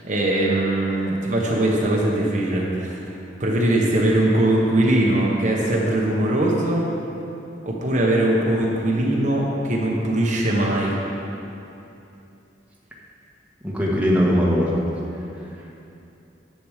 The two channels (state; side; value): normal; both; correlation 0.69